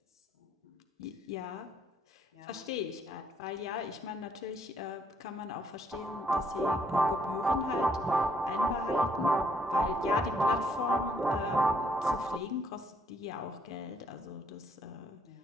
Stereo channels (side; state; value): both; normal; correlation 0.69